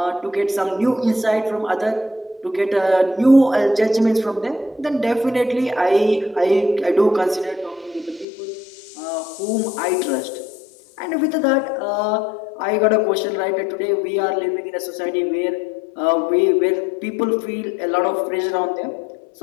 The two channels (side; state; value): right; drops out; at 8.2 s